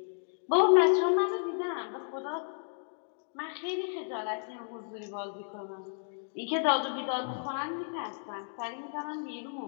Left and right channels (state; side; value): silent; right; digital silence